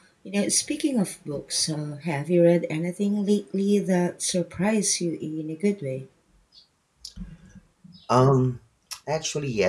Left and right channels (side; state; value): both; identical; correlation 1.00